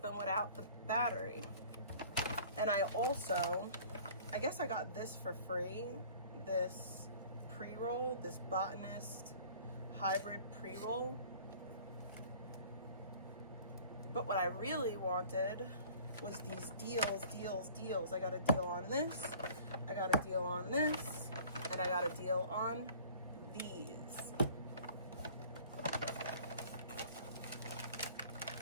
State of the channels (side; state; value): both; inverted; correlation -0.49